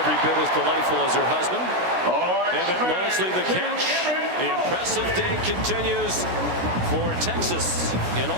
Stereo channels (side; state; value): left; late; 16 ms